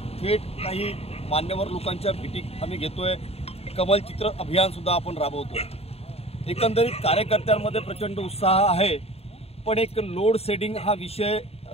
थेट काही मान्यवर लोकांच्या भेटी आम्ही घेतोय। कमल चित्र अभियान सुद्धा आपण राबवतोय। एकंदरीत कार्यकर्त्यांमध्ये प्रचंड उत्साह आहे, पण एक लोड शेडिंग हा विषय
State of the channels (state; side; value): late; right; 0.29 ms